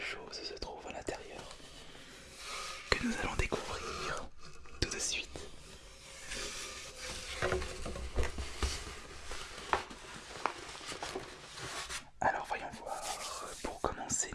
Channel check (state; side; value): identical; both; correlation 1.00